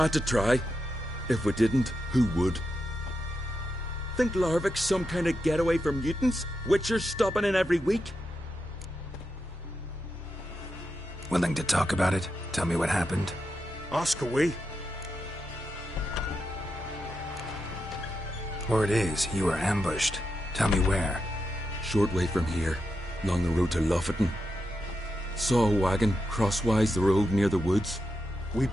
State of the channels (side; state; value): both; normal; correlation 0.86